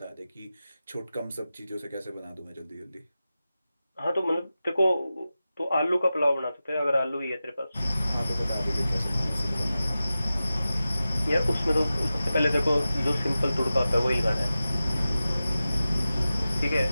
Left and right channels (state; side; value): inverted; both; correlation -0.94